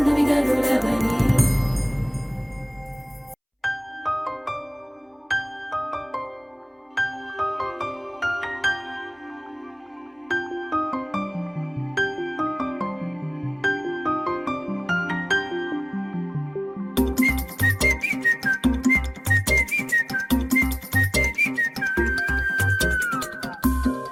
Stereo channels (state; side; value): identical; both; correlation 1.00